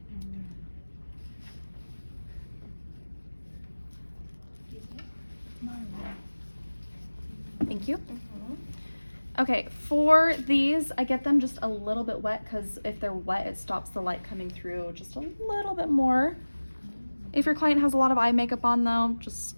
Thank you. Okay, for these, I get them just a little bit wet because if they're wet, it stops the light coming through just a little bit more. If your client has a lot of eye makeup on though, just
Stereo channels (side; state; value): both; inverted; correlation -1.00